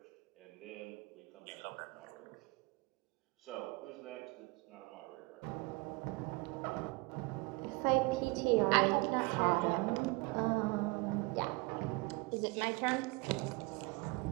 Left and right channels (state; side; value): quieter; left; 26.1 dB